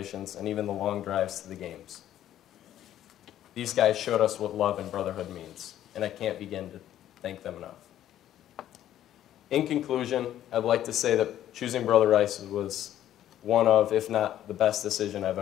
and even the long drives to the games. These guys showed us what love and brotherhood means, and I can't begin to thank them enough. In conclusion, I'd like to say that choosing Brother Rice was one of, if not the best decision I've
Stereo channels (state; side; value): quieter; right; 11.9 dB